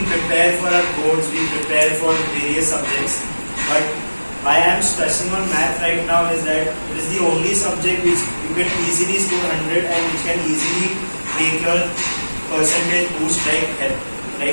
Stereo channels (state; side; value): inverted; both; correlation -1.00